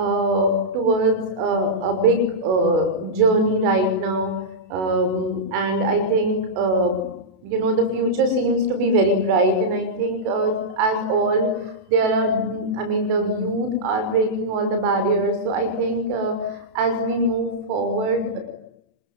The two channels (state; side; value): late; left; 32 ms